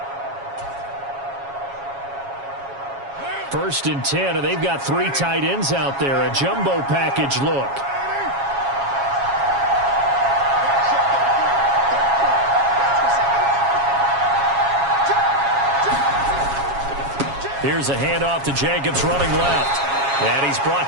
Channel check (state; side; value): late; left; 7.3 ms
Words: First and 10, and they've got three tight ends out there. A jumbo package look. Here's a handoff to Jacobs running left. And he's